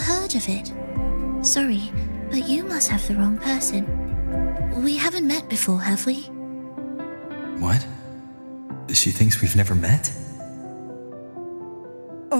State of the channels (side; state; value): both; inverted; correlation -1.00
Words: of it. Sorry, but you must have the wrong person. We haven't met before, have we? What? She thinks we've never met?